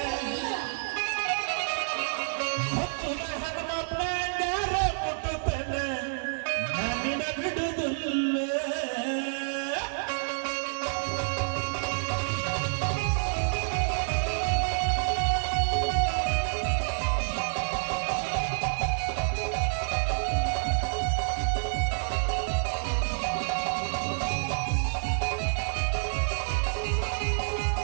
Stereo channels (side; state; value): left; silent; digital silence